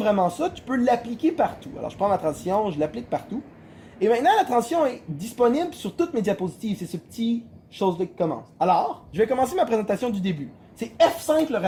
ça, tu peux l'appliquer partout. Alors, je prends ma transition, je l'applique partout. Et maintenant, la transition est disponible sur toutes mes diapositives. C'est ce petit chose-là qui commence. Alors, je vais commencer ma présentation du début. C'est F5 le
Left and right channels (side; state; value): both; identical; correlation 1.00